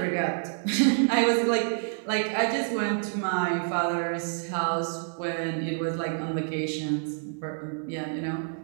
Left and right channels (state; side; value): silent; left; 59 dB below the other